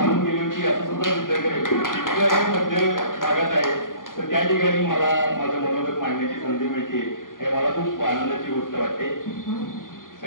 गेली होती असं सुद्धा सिद्ध करेल. इतकं मध्य भागात आहे. तर त्या ठिकाणी मला माझं मनोगत मांडण्याची संधी मिळते हे मला खूप आनंदाची गोष्ट वाटते.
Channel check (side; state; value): right; late; 0.90 ms